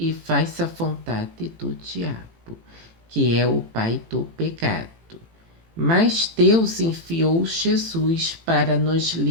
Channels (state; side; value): late; left; 18 ms